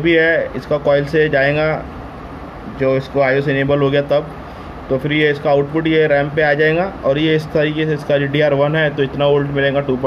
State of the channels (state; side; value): identical; both; correlation 1.00